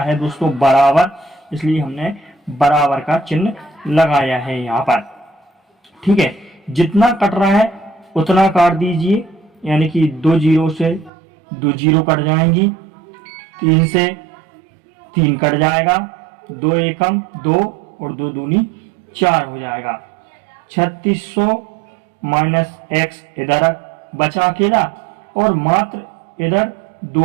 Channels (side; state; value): left; drops out; at 11.1 s